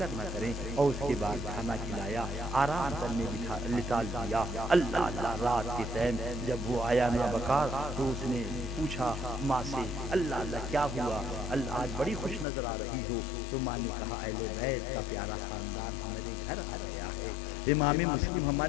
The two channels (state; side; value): drops out; right; at 12.5 s